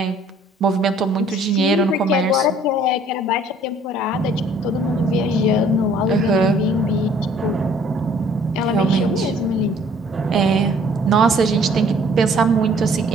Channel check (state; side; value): normal; both; correlation 0.57